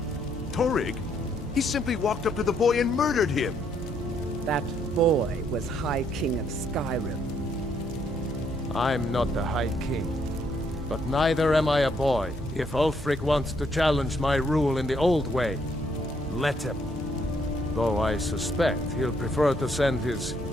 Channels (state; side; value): normal; both; correlation 0.71